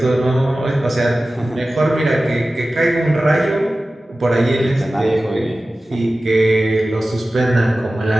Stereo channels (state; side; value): normal; both; correlation 0.95